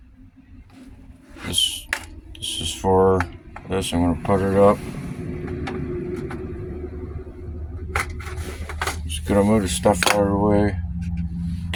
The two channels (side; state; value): both; identical; correlation 1.00